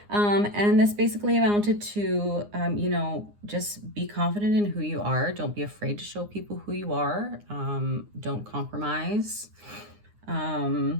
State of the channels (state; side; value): late; left; 9.7 ms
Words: And this basically amounted to, just be confident in who you are. Don't be afraid to show people who you are. Don't compromise. And